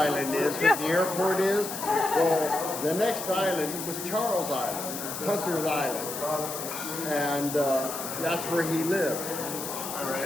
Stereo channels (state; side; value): noise; left; hiss, 7 dB below the sound